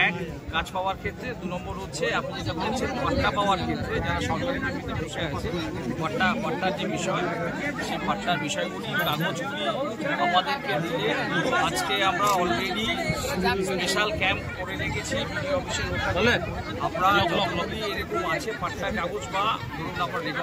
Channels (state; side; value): identical; both; correlation 1.00